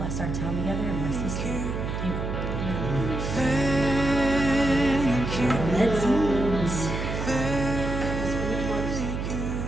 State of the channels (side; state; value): right; noise; hum, 3 dB below the sound